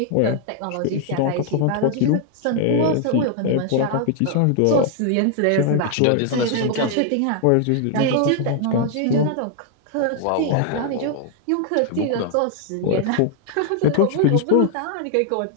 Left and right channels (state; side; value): different; both; correlation 0.00